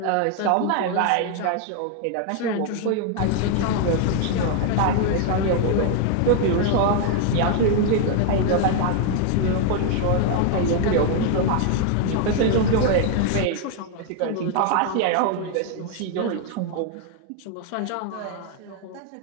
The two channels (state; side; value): different; both; correlation 0.00